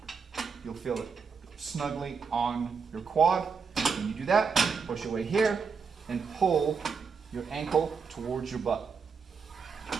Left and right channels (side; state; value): left; quieter; 5.6 dB